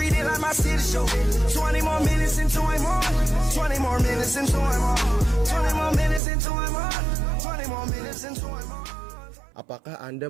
it like my city show. 20 more minutes into I'm on. 20 more minutes into I'm on. 20 more minutes into I'm on. 20 more minutes into I'm on. Apakah Anda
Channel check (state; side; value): drops out; left; at 6.2 s